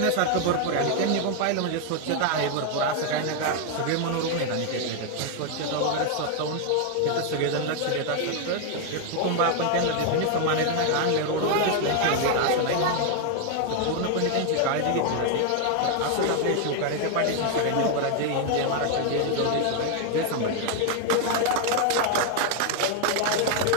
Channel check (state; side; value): different; both; correlation 0.00